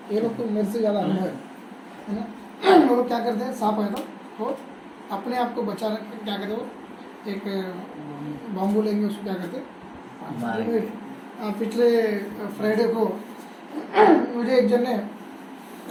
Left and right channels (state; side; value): identical; both; correlation 1.00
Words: ये लोग तो मेरे से ज़्यादा अनुभव है ना। वो लोग क्या करते हैं, सांप आए तो अपने आप को बचाने क्या करते हो, एक बाम्बू लेंगे, उसको क्या करते हैं। पिछले फ्राइडे को मुझे एक जन ने